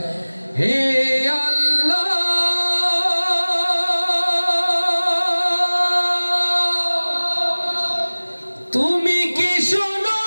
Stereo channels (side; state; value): both; inverted; correlation -1.00